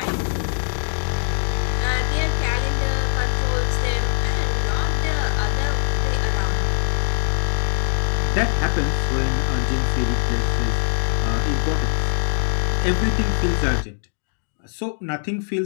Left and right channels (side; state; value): right; silent; 58 dB below the other